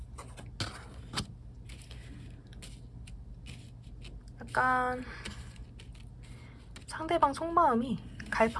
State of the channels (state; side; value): identical; both; correlation 1.00